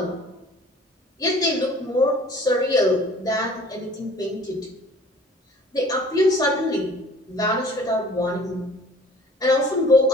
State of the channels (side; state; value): both; normal; correlation 0.50